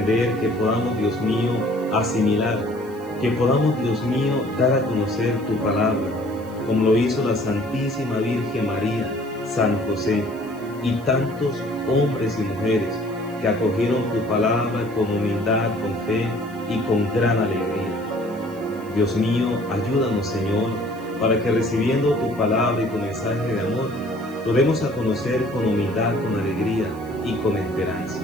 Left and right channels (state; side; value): noise; left; hiss, 27 dB below the sound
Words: que podamos, Dios mío, asimilar, que podamos, Dios mío, dar a conocer tu palabra, como lo hizo la Santísima Virgen María, San José y tantos hombres y mujeres que acogieron tu palabra con humildad, con fe y con gran alegría. Dios mío, ayúdanos, Señor, para que recibiendo tu palabra y tu mensaje de amor, podamos a conocer con humildad, con alegría y con esperanza.